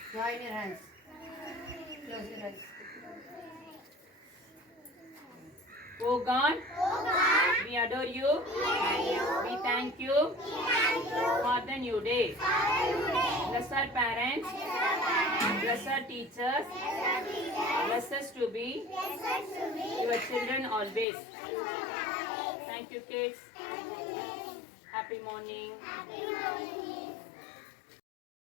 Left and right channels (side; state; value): right; drops out; at 21.1 s